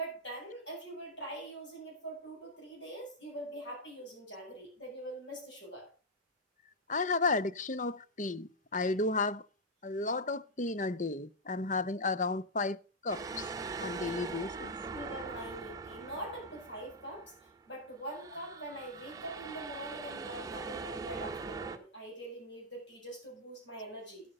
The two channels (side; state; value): both; normal; correlation -0.03